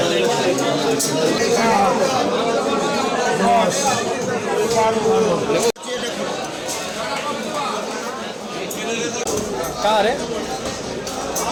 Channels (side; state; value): both; identical; correlation 1.00